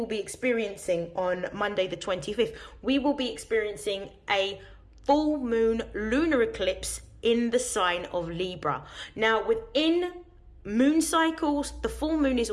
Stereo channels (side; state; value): both; identical; correlation 1.00